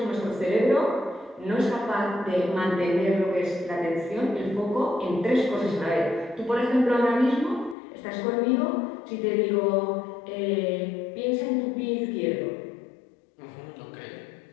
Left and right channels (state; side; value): drops out; right; at 7.8 s